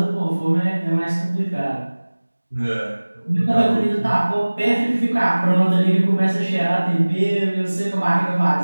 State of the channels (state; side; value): inverted; both; correlation -1.00